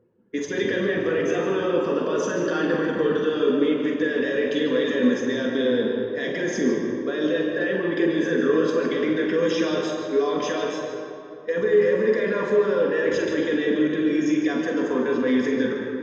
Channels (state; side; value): identical; both; correlation 1.00